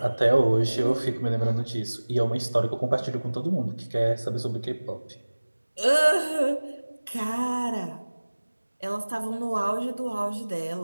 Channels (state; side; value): inverted; both; correlation -1.00